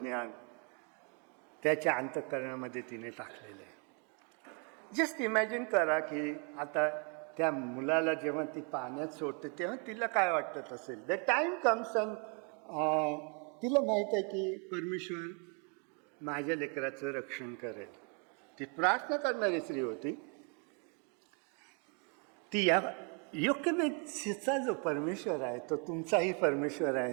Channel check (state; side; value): quieter; left; 37.3 dB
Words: त्याच्या अंतःकरणामध्ये तिने टाकलेलं आहे. जस्ट इमॅजिन करा की आता त्या मुलाला जेव्हा ती पाण्यात सोडते तेव्हा तिला काय वाटत असेल. द टाईम कम्स अँड तिला माहीत आहे की परमेश्वर माझ्या लेकराचं रक्षण करेल. ती प्रार्थना करणारी स्त्री होती. ती या योक्यमेतचा जो परमेश्वर आहे तो तुमचाही परमेश्वर